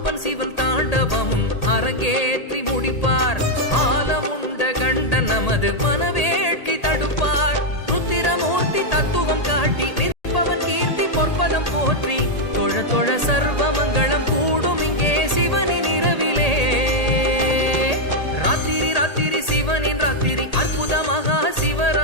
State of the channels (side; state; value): right; late; 1.8 ms